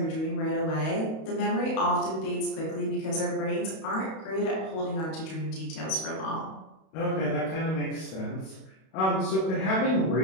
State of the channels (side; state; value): right; late; 31 ms